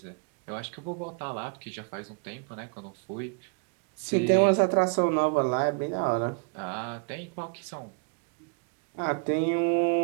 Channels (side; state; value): left; quieter; 34.4 dB